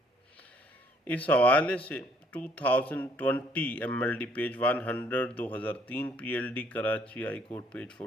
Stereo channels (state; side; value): normal; both; correlation 0.64